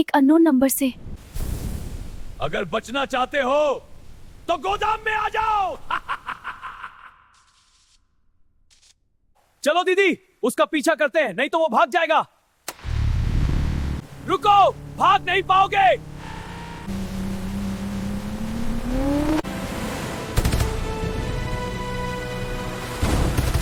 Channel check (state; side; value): identical; both; correlation 1.00